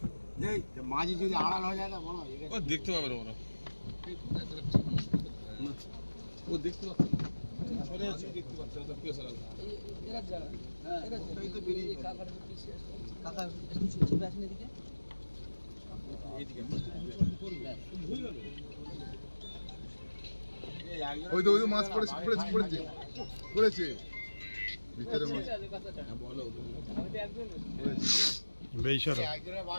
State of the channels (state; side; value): inverted; both; correlation -1.00